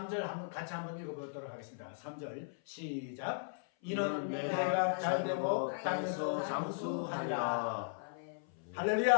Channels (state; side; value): silent; right; 53 dB below the other